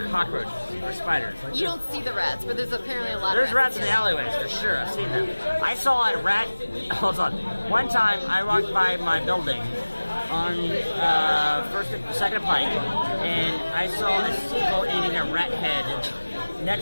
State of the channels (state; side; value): inverted; both; correlation -1.00